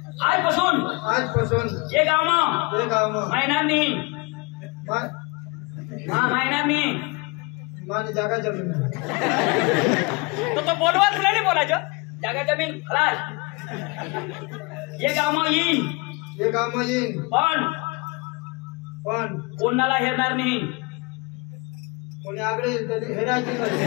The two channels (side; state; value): right; quieter; 27.5 dB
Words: आजपासून ये गाव मग ते गाव मग महिन्यांनी मा- हा महिन्यांनी माने जागा जमीन तो बोलवा तुला नाही बोलायचं जागा जमीन खलास ये गाव मग येईन हे गाव मग येईन. पण पण कोणाला हेरणार नाही कोणी आगळे हेरायचे